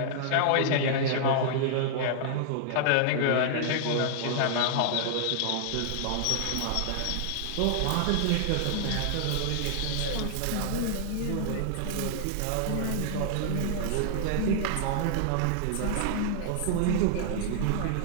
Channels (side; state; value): both; different; correlation -0.01